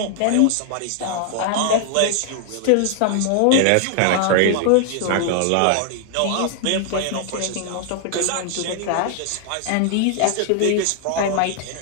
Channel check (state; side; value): different; both; correlation 0.00